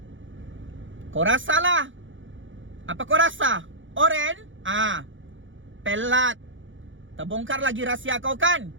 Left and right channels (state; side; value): late; left; 0.56 ms